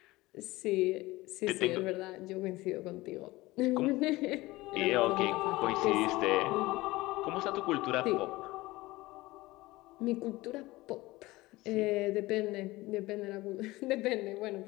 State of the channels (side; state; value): right; quieter; 19.8 dB